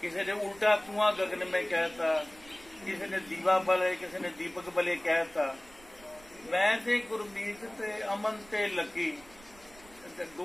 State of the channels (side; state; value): right; noise; rumble, 24 dB below the sound